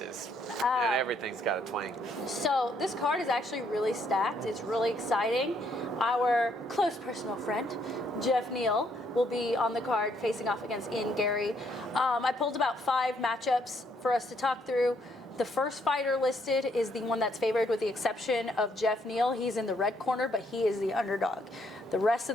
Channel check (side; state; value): both; normal; correlation 0.70